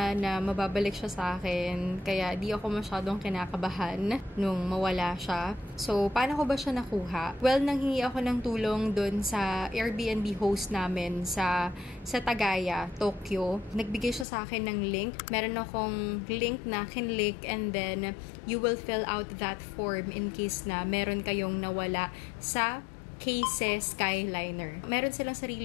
na mababalik siya sa akin. Kaya di ako masyadong kinakabahan nung mawala siya. So, paano ko ba siya nakuha? Well, nanghingi ako ng tulong dun sa Airbnb host namin sa Tagaya, Tokyo. Nagbigay siya sa akin ng link. Meron akong link na kinlink and then you will fill out that form in case na meron kayong nawala sa KSES Skyliner. Meron silang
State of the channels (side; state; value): right; drops out; at 14.2 s